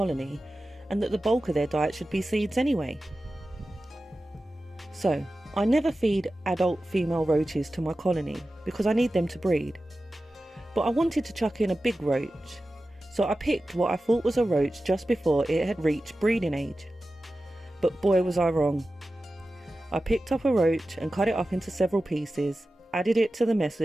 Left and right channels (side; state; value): both; normal; correlation 0.94